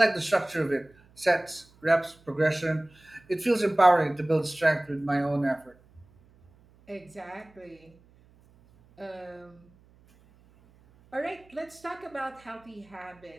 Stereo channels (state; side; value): noise; right; hum, 29 dB below the sound